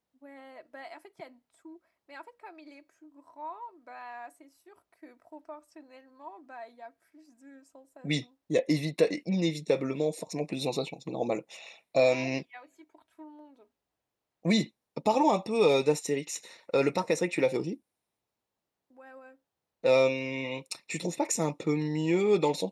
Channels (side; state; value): both; identical; correlation 1.00